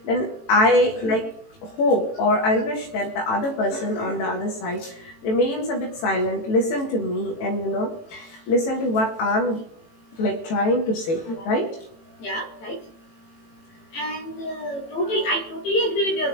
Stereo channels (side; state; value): right; late; 18 ms